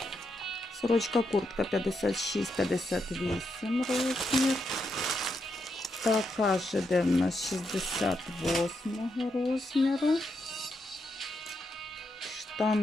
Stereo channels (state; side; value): normal; both; correlation 0.82